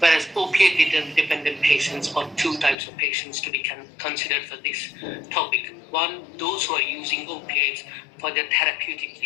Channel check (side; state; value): right; drops out; at 2.8 s